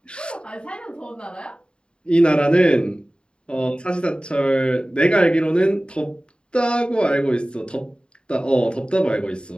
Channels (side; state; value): right; late; 0.052 ms